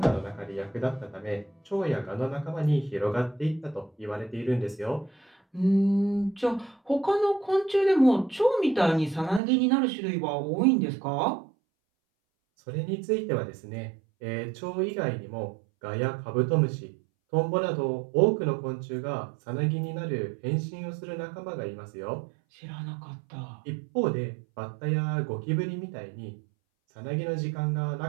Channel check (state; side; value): drops out; left; at 9.4 s